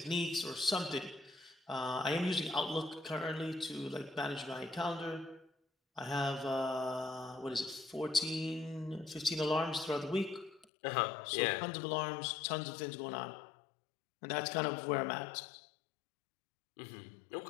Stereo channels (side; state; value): right; drops out; at 10.7 s